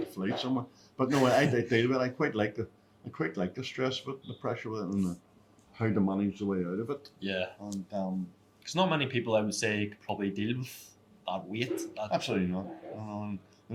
a flight somewhere. But no, I deal with it. I quite like the stress of it, the pressure of it, and how to manage the way out of it. Yeah. And because not many people, I would say, could probably deal with that weight. absolutely not.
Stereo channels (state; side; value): identical; both; correlation 1.00